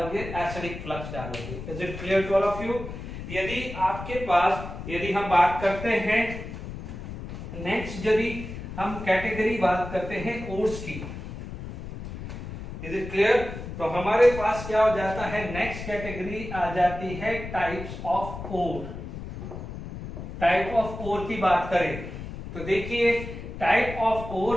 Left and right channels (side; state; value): left; noise; rumble, 9 dB below the sound